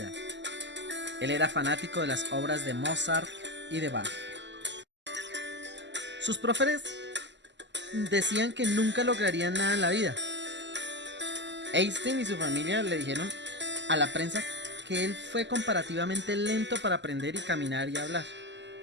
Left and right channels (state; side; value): late; left; 0.52 ms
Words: Él era fanático de las obras de Mozart y de Bach. Sus profesores decían que nunca lograrían nada en la vida. Einstein y su familia le dijeron a la prensa que él fue comparativamente lento para aprender y caminar y hablar.